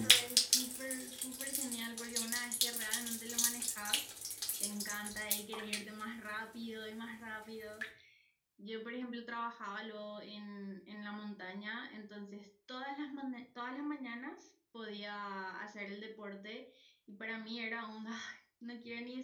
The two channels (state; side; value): identical; both; correlation 1.00